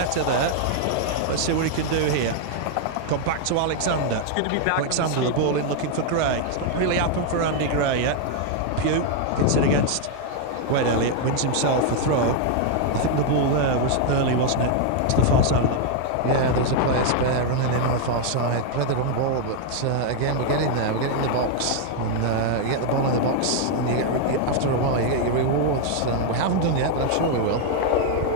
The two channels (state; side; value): different; both; correlation 0.00